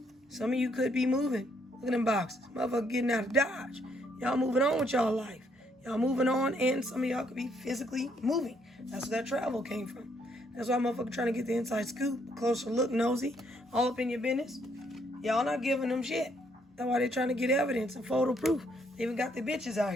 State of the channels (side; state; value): both; normal; correlation 0.70